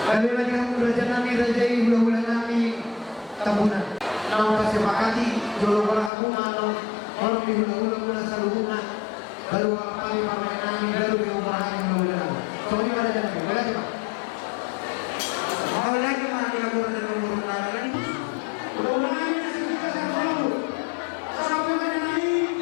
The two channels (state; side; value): drops out; right; at 6.1 s